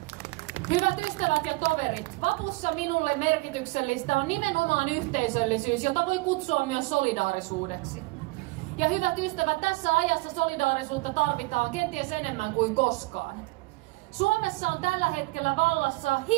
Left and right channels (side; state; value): left; quieter; 23.2 dB